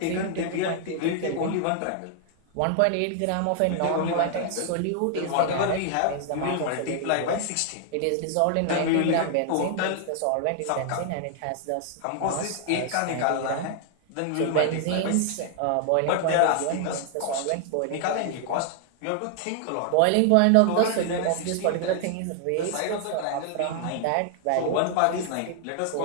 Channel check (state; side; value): different; both; correlation 0.00